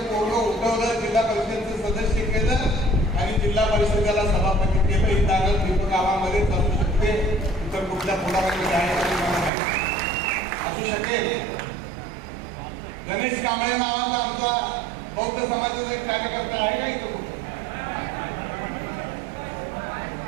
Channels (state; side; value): drops out; left; at 9.5 s